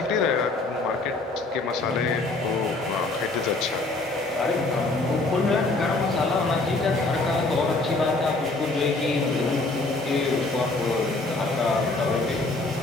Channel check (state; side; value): quieter; right; 3.2 dB